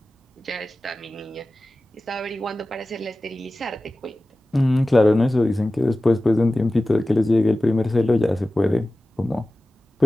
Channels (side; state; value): both; normal; correlation 0.96